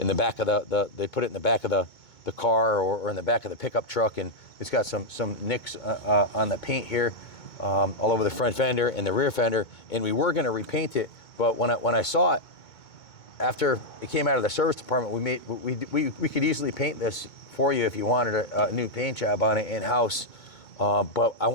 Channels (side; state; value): right; late; 2.2 ms